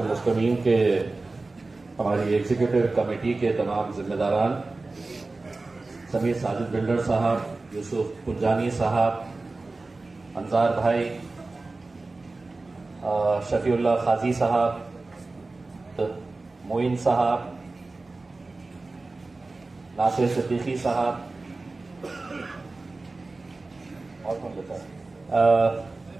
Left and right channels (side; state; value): left; quieter; 3.4 dB